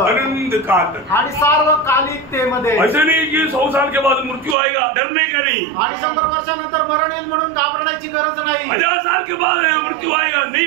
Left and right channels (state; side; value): drops out; left; at 4.5 s